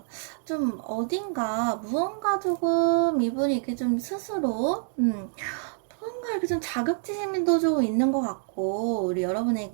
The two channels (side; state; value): left; silent; digital silence